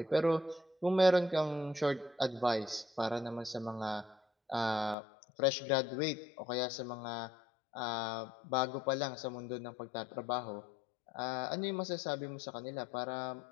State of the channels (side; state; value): right; drops out; at 5.0 s